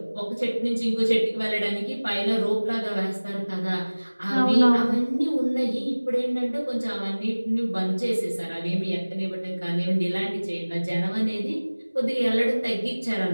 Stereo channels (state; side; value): inverted; both; correlation -1.00